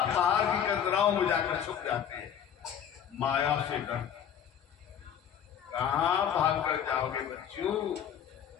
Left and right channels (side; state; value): right; quieter; 8.8 dB